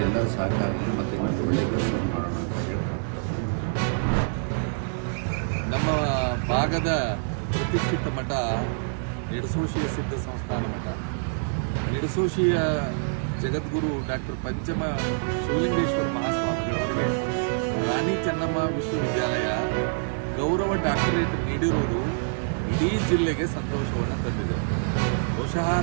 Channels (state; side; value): silent; left; digital silence